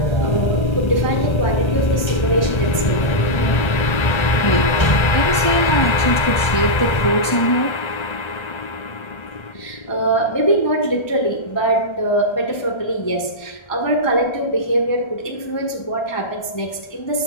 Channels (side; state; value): right; late; 1.3 ms